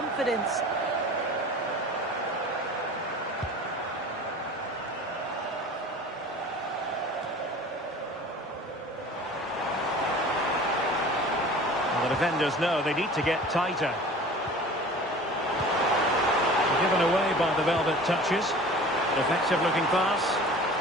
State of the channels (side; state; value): both; normal; correlation 0.42